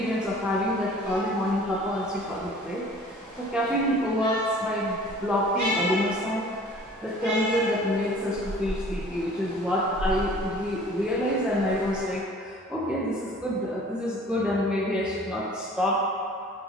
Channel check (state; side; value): normal; both; correlation 0.49